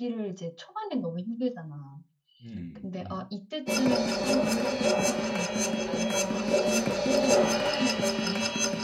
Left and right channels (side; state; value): both; identical; correlation 1.00